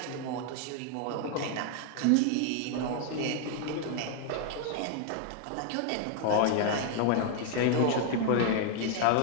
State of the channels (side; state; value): both; different; correlation 0.00